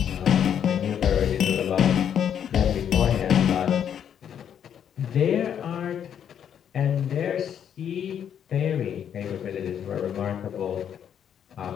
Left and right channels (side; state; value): right; quieter; 8.9 dB